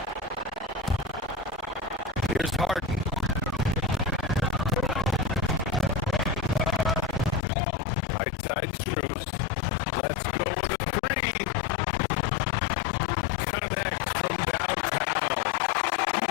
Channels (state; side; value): drops out; right; at 7.5 s